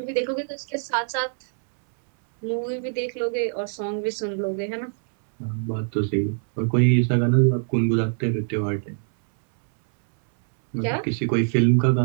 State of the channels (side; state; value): left; silent; 63 dB below the other